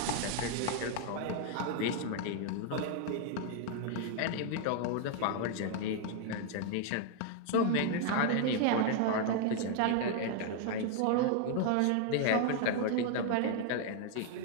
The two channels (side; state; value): both; different; correlation 0.00